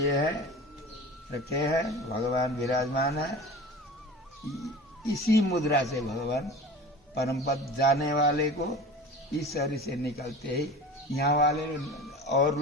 हैं, रखे हैं, भगवान विराजमान है। इसी मुद्रा से भगवान परम पद जाने वाले को इस शरीर से निकलते ही यहाँ वाले और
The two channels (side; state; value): both; normal; correlation 0.37